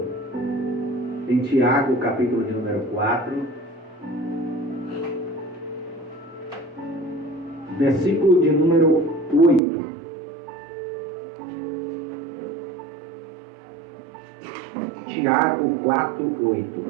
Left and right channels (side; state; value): left; drops out; at 9.6 s